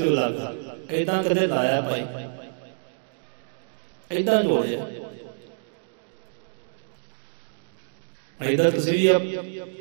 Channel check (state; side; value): silent; left; digital silence